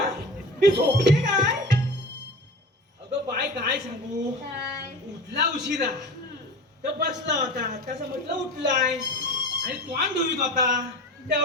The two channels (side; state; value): both; normal; correlation 0.33